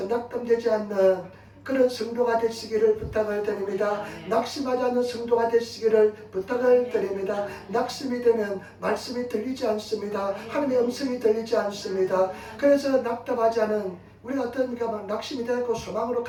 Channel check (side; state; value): both; identical; correlation 1.00